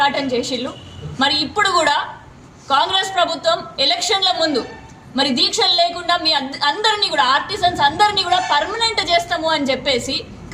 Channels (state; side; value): identical; both; correlation 1.00